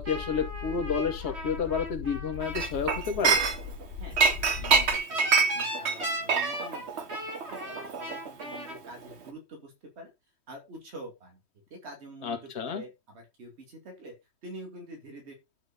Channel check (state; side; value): late; left; 3.1 ms